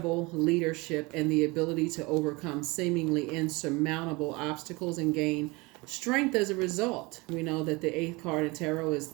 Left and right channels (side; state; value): left; quieter; 24.9 dB